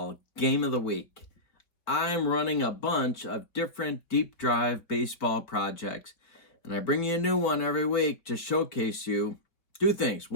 Game of the Week. I'm running a bunch of different deep drive baseball projects, and I bring you a new one every week to showcase you two things.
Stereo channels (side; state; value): right; late; 4.3 ms